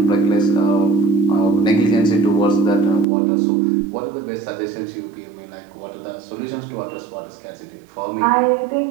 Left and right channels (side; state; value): left; drops out; at 3.1 s